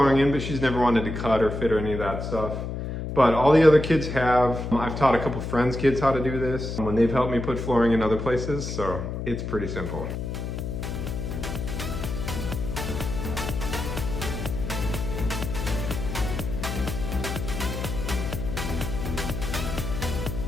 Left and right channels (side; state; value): left; noise; hum, 5 dB below the sound